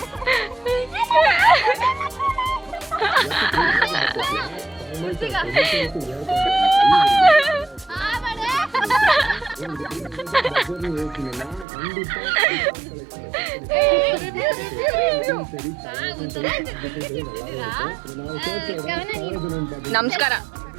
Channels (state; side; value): drops out; left; at 11.7 s